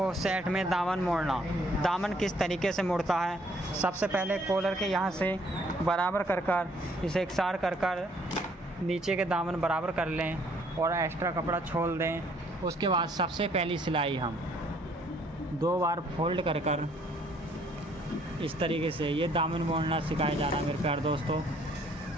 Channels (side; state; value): both; normal; correlation 0.63